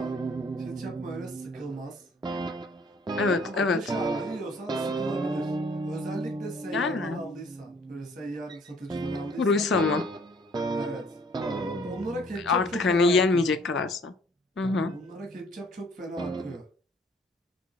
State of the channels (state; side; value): normal; both; correlation 0.58